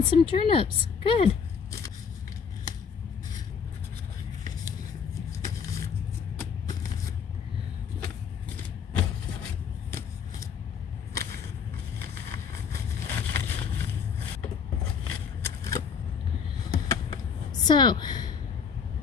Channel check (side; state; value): right; quieter; 6.5 dB